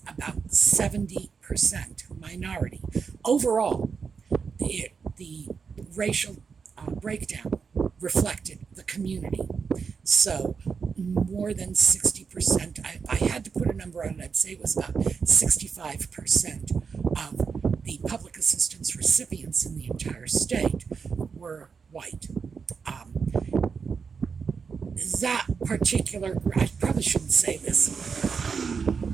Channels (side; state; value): left; quieter; 5.7 dB